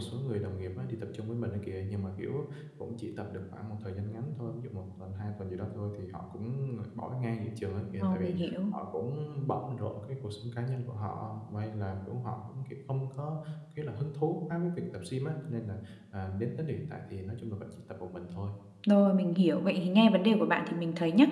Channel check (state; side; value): identical; both; correlation 1.00